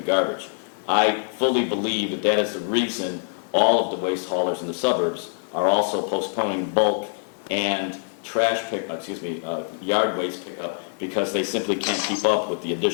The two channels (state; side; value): silent; right; digital silence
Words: garbage. I fully believe that that is the reason all of the waste haulers in the suburbs are also postponing bulk and trash yard waste pickup, because they simply can't keep up with the